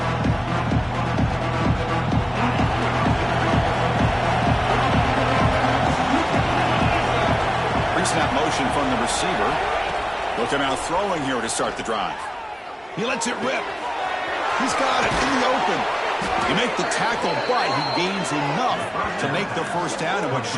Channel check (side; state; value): both; identical; correlation 1.00